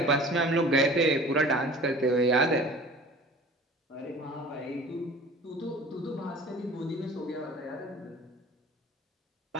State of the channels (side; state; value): both; normal; correlation 0.44